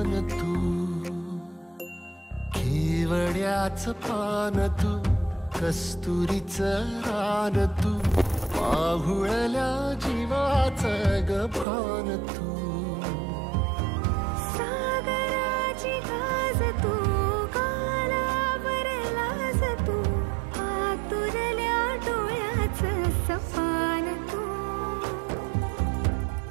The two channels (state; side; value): drops out; left; at 11.7 s